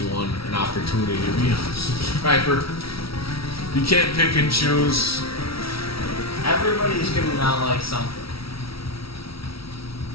an opportunity to be a subscriber. You can't pick and choose. Everybody's gonna not like something.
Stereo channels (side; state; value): right; late; 0.75 ms